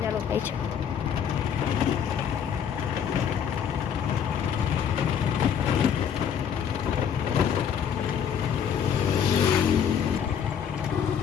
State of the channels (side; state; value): right; quieter; 8.1 dB